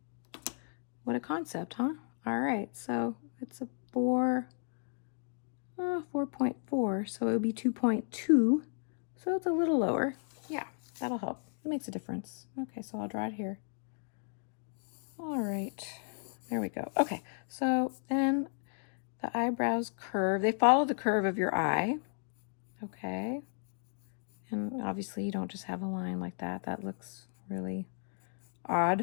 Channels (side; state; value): right; silent; 55 dB below the other